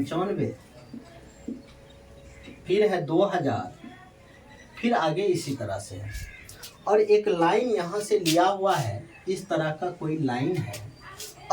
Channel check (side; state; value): both; identical; correlation 1.00